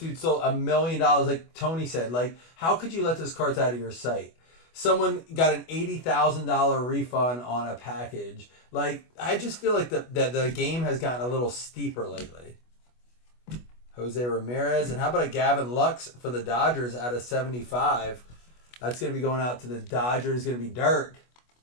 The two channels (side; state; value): right; late; 25 ms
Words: stole $1 million, like Tony said. Like, how could you let those cards out of your sight? Someone got an $80,000 refund on a package. Like, I just feel like the game has gotten a little steeper lately. Jose Ramirez, and how about a Gavin Lux for the Dodgers out of 75? That's going to be going out to the Dodgers. Going to be Dirk.